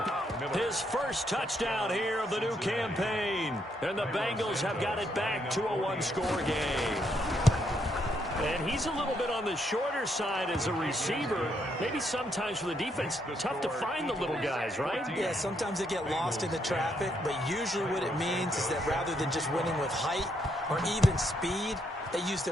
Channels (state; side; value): normal; both; correlation 0.75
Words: his first touchdown here of the new campaign. And the Bengals have got it back to a one-score game. And he's a little bit on the shorter side as a receiver. Maybe sometimes for the defense, tough to find the little guys, right? Yeah, sometimes they get lost in the traffic, but usually what it means is that rather than just winning with height or even speed, they use